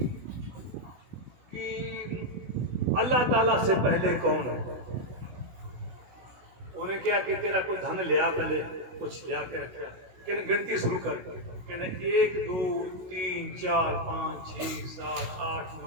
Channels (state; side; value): late; left; 16 ms